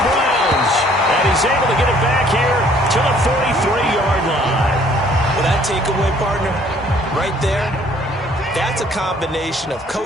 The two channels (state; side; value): normal; both; correlation 0.59